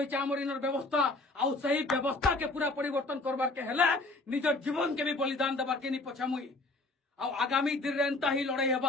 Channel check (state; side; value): quieter; right; 3.0 dB